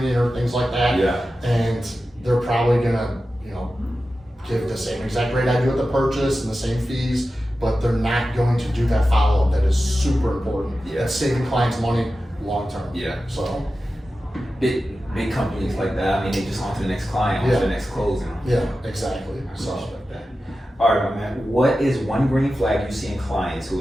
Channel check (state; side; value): normal; both; correlation 0.93